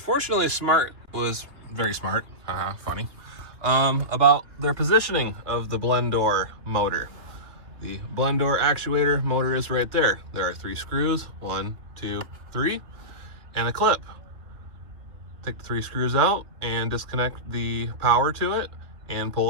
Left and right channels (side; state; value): left; late; 2.8 ms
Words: Smart was very smart, funny, about their positioning of the blend door motor. The blend door actuator motor is right there. There are 3 screws, 1, 2, 3, and a clip. Take the 3 screws out and disconnect the power to it and pull